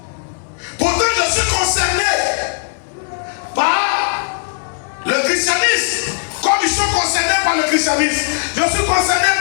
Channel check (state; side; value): silent; right; 65 dB below the other